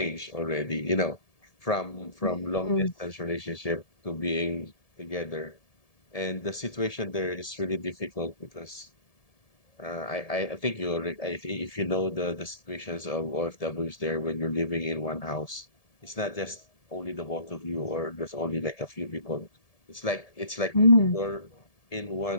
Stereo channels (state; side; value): late; right; 1.7 ms